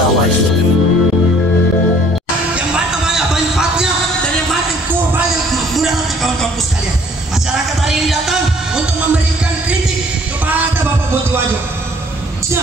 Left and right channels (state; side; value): normal; both; correlation 0.58